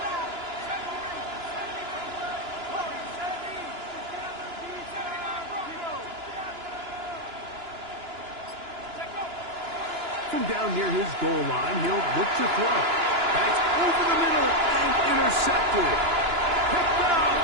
From down near his goal line, he'll look to throw. That's over the middle and intercepted. Picked off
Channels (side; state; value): left; late; 2.9 ms